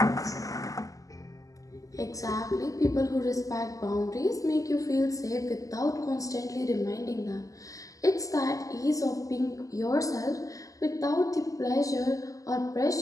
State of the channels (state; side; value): late; right; 0.17 ms